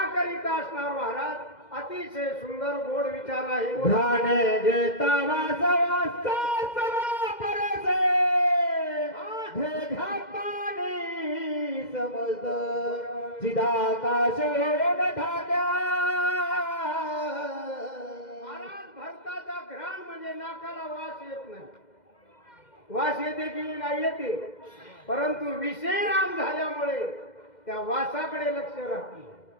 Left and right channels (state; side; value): late; right; 2.1 ms